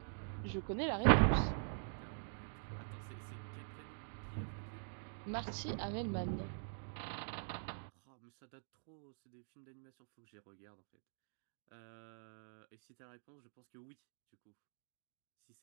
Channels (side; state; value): left; silent; digital silence